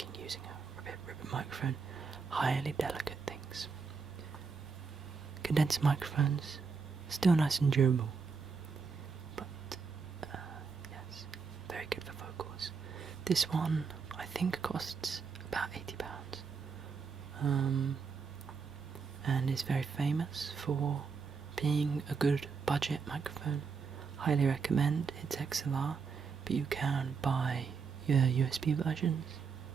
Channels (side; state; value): left; quieter; 5.4 dB